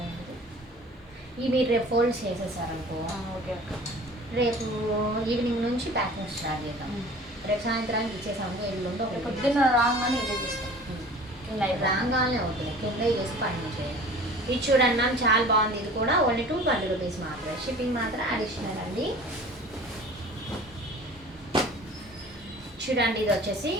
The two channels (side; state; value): both; normal; correlation 0.44